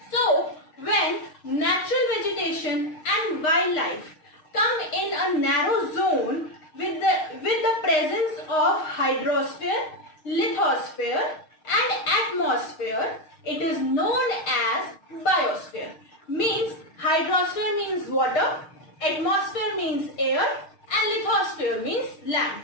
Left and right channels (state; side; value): late; right; 6.4 ms